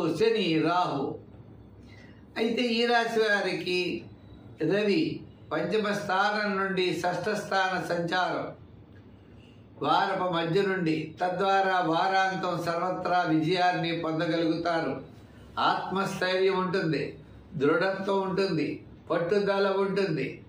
శని, రాహు. అయితే ఈ రాశి వారికి రవి పంచమ స్థానం నుండి షష్ఠ స్థాన సంచారం వారపు మధ్య నుండి, తద్వారా వారాంతం సర్వత్రా విజయాన్ని పొందగలుగుతారు. ఆత్మస్థైర్యం ఉంటుంది, దృఢత్వం ఉంటుంది, పట్టుదల ఉంటుంది.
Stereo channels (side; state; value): both; identical; correlation 1.00